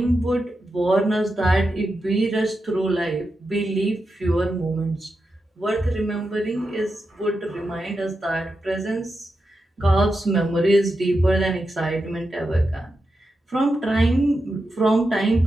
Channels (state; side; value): normal; both; correlation 0.88